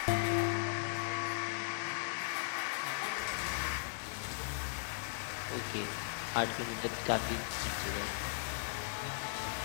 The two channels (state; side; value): silent; right; digital silence